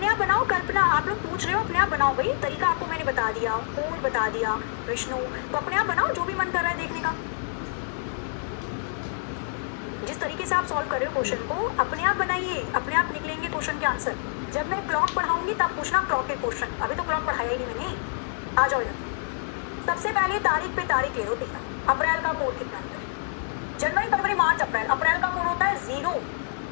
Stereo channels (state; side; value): silent; right; 60 dB below the other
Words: आप बनाओ कल्पना, आप लोग पूछ रहे हो अपने आप बनाओ भाई, तरीका आपको मैंने बता दिया, कोड बता दिया विष्णु, तो अपने आप बनाओ जो भी मन कर रहा है देखने का। जिस तरीके से आप सॉल्व कर रहे हो क्वेश्चन को, अपने आप बनाइए, अपने आप निकलेंगे क्वेश्चन के आंसर। जब मैं क्लॉक पढ़ाऊंगी तब पूछना क्लॉक के क्वेश्चन, अभी तो क्लॉक पढ़ाया ही नहीं मैंने। आ जाओ इधर। सबसे पहले तारीख पे तारीख ले लो बेटा, अप्रैल का कोड कितना होता है? जनवरी फरवरी मार्च अप्रैल, अप्रैल का कोड होता है 0।